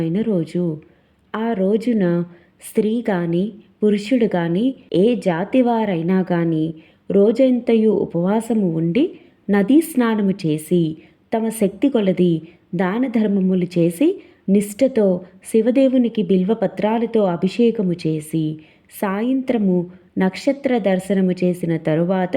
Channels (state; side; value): identical; both; correlation 1.00